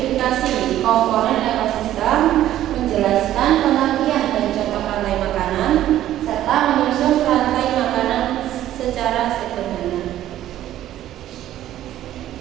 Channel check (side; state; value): left; quieter; 12.8 dB